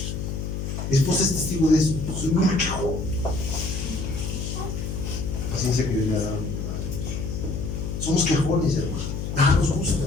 Mi esposa es testigo de eso. Soy muy quejón. La paciencia que Dios le ha dado. Somos quejones, hermano. Nada nos gusta.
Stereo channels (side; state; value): left; noise; hum, 4 dB below the sound